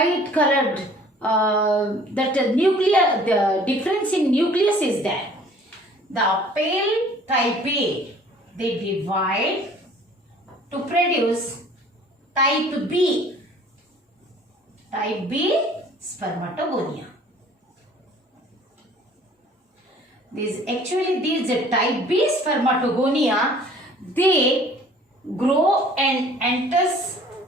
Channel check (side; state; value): both; normal; correlation 0.52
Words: colored. The difference in nucleus is there. The pale type A, they divide to produce type B. Type B Spermatogonia. These type B Spermatogonia, they grow and